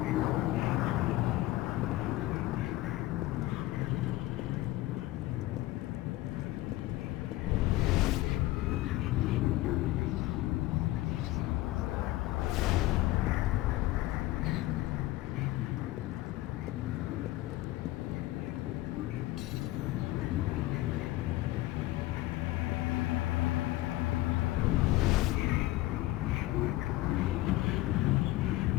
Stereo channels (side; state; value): right; quieter; 17.2 dB